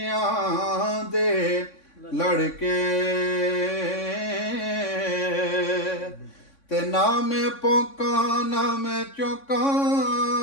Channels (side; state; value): right; late; 3.6 ms